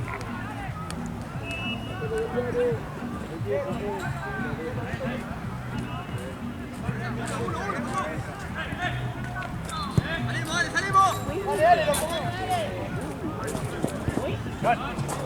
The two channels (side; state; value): both; identical; correlation 1.00